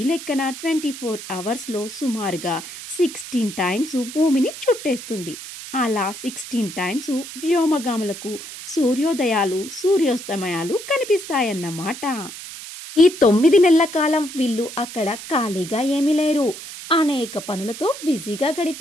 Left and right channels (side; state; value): right; noise; hiss, 12 dB below the sound